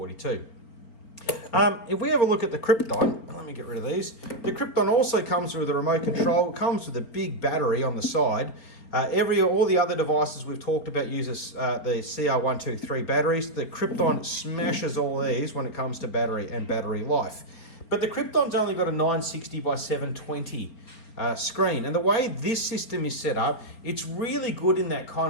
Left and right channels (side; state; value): right; late; 4.4 ms